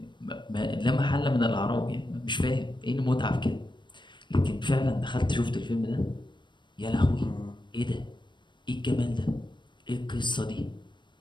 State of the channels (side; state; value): right; late; 0.22 ms